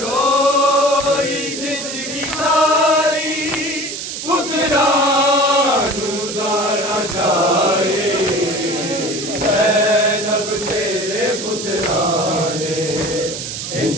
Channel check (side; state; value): right; noise; hiss, 7 dB below the sound